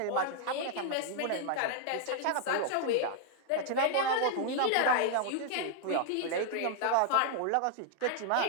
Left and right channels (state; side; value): different; both; correlation 0.00